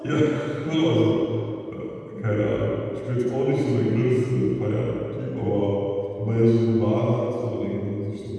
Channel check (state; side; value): identical; both; correlation 1.00